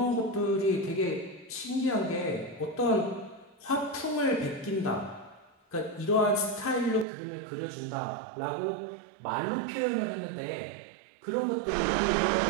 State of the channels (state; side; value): drops out; left; at 7.1 s